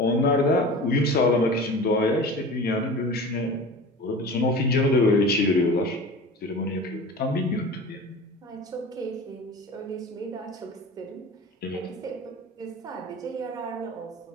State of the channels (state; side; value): normal; both; correlation 0.36